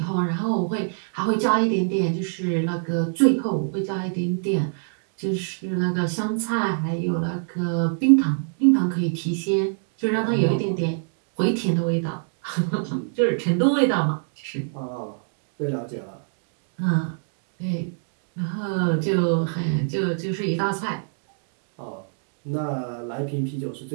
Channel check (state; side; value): silent; left; digital silence